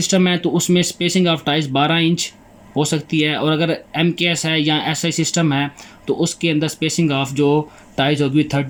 है तो उसमें स्पेसिंग ऑफ टाइज 12 इंच हो सकती है, और अगर MKS है या SI सिस्टम है तो उसके अंदर स्पेसिंग ऑफ जो टाइज होगी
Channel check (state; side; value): identical; both; correlation 1.00